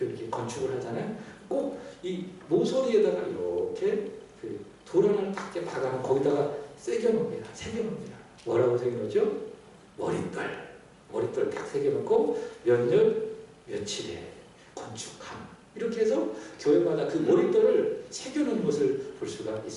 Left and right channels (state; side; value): identical; both; correlation 1.00